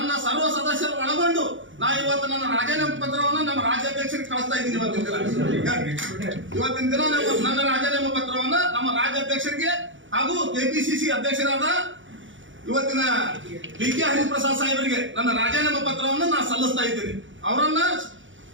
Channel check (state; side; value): late; left; 0.56 ms